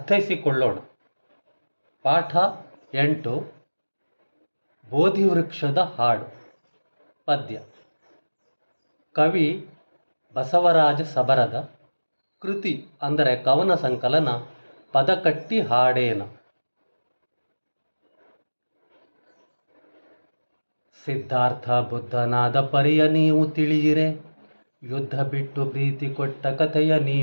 ಪಾಠ 8 ಬೋಧಿವೃಕ್ಷದ ಹಾಡು. ಪದ್ಯ. ಕವಿ ಬಸವರಾಜ ಸಬರದ. ಕೃತಿ ಅಂದರೆ ಕವನ ಸಂಕಲನ ಪದಕಟ್ಟಿ ಹಾಡೇನ. ಸಿದ್ಧಾರ್ಥ ಬುದ್ಧನಾದ ಪರಿಯ ನೀವು ತಿಳಿಯಿರೆ, ಯುದ್ಧ ಬಿಟ್ಟು ಪ್ರೀತಿ ಕೊಟ್ಟ ಕಥೆಯ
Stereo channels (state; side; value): inverted; both; correlation -1.00